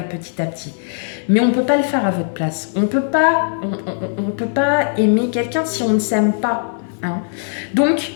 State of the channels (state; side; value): silent; right; digital silence